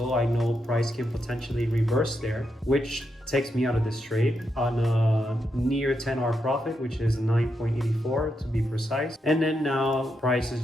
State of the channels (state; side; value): normal; both; correlation 0.83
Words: I know price can potentially reverse there, which takes me out of this trade on a near 10-hour profit, which is 9.84 to be precise. And then now price is